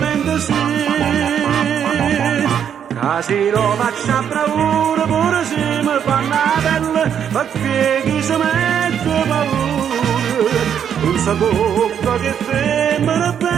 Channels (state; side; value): quieter; left; 8.6 dB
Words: sì. Casi lo faccio a bravura, pure se mi fanno la pelle, perché chi si mette paura, non sa bocca che